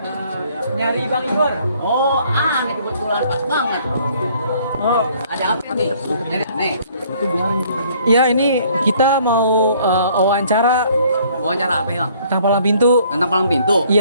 Nyari Bang Igor. Oh, aneh kebetulan pas banget. Oh, ada apa nih? Nyari aneh. Ya ini kita mau wawancara Wawancara apa, Bang? tentang Palang Pintu. Tentang Palang Pintu?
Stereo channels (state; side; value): inverted; both; correlation -0.60